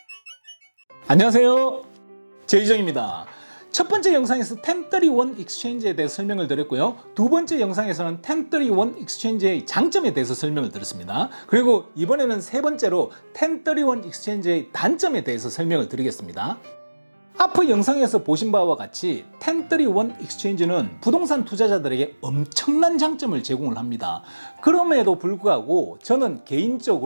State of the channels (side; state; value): both; inverted; correlation -1.00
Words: 안녕하세요, 제이정입니다. 첫 번째 영상에서 1031 익스체인지에 대해 설명을 드렸고요. 두 번째 영상에서는 1031 익스체인지의 장점에 대해서 설명을 드렸습니다. 그리고 이번에는 세 번째로 1031 익스체인지의 단점에 대해서 설명을 드리겠습니다. 앞의 영상에서 보신 바와 같이 1031 익스체인지는 부동산 투자자들에게 엄청난 장점을 제공을 합니다. 그럼에도 불구하고 저는